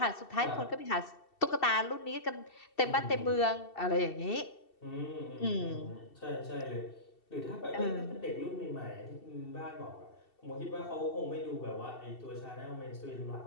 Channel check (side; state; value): right; late; 2.7 ms